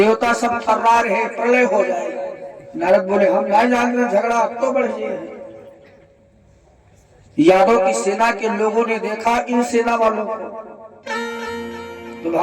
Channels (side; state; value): both; identical; correlation 1.00